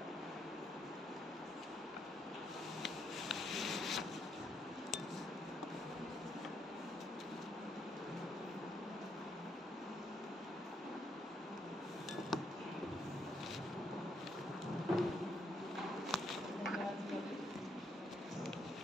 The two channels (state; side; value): normal; both; correlation 0.75